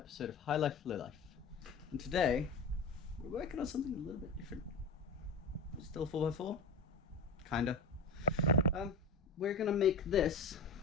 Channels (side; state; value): right; quieter; 3.9 dB